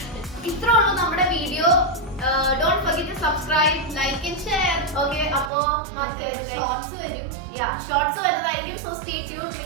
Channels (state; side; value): drops out; left; at 5.5 s